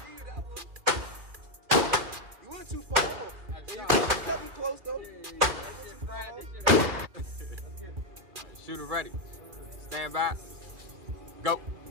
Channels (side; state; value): left; late; 2.4 ms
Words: You went too far off. And you kept him close though. You went too far off. Shooter ready. Stand by. Go. It